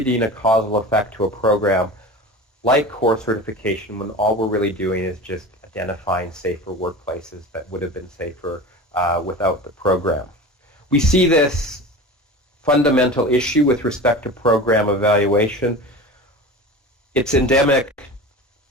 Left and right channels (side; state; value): both; normal; correlation 0.33